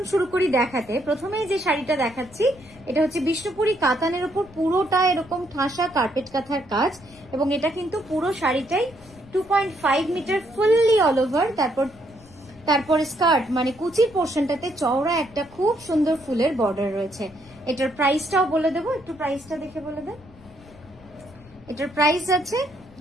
শুরু করি দেখাতে। প্রথমে যে শাড়িটা দেখাচ্ছি এটা হচ্ছে বিষ্ণুপুরি কাতানের উপর পুরোটা এরকম ঠাসা কার্পেট কাঁথার কাজ, এবং এটা কিন্তু পুরো শাড়িটাই 2.5 মিটার ফুললি অল ওভার। তারপর স্কার্ট মানে কুচির পোর্শনটাতে চওড়া একটা খুব সুন্দর ফুলের বর্ডার রয়েছে। এটার প্রাইসটাও বলে দেবো, একটু প্রাইসটা দেখে বলে দেন। এটার প্রাইস আছে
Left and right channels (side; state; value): left; noise; rumble, 23 dB below the sound